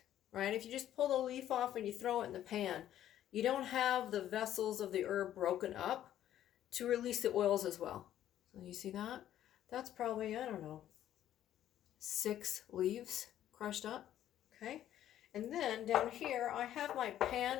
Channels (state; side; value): quieter; right; 11.8 dB